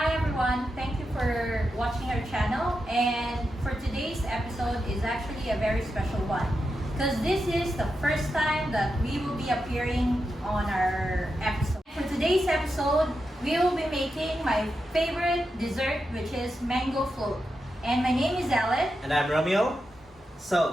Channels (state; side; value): normal; both; correlation 0.88